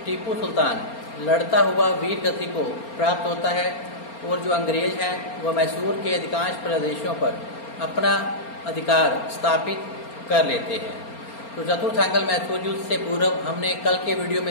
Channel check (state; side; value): late; right; 4.3 ms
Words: टीपू सुल्तान लड़ता हुआ वीर गति को प्राप्त होता है और जो अंग्रेज हैं वह मैसूर के अधिकांश प्रदेशों पर अपना अधिकार स्थापित कर लेते हैं। तो चतुर्थ आंग्ल मैसूर युद्ध से पूर्व हमने कल के वीडियो